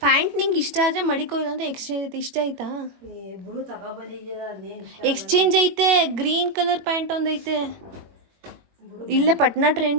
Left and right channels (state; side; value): late; left; 21 ms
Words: ಪ್ಯಾಂಟ್ ನಿಂಗೆ ಇಷ್ಟ ಆದರೆ ಮಡಿಕೋ, ಇಲ್ಲಾಂದ್ರೆ ಎಕ್ಸ್ಚೇಂಜ್ ಐತೆ. ಇಷ್ಟ ಆಯ್ತಾ? ಎಕ್ಸ್ಚೇಂಜ್ ಐತೆ, ಗ್ರೀನ್ ಕಲರ್ ಪ್ಯಾಂಟ್ ಒಂದೈತೆ ಇಲ್ಲೇ ಪಟ್ನಾ